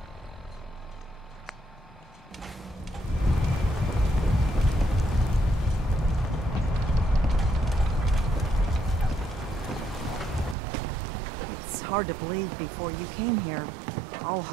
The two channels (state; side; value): drops out; left; at 10.6 s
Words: It's hard to believe before you came here, all